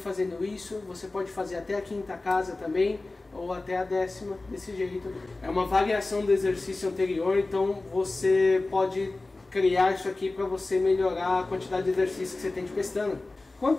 isso, você pode fazer até a quinta casa também, ou até a 10ª, desse jeito. É uma variação do exercício anterior, então você pode criar isso aqui para você melhorar a quantidade de exercício que você tem de pestana. Quanto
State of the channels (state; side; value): quieter; right; 3.2 dB